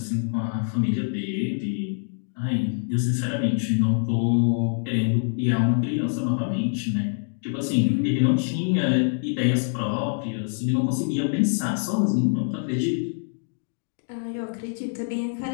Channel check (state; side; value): silent; right; digital silence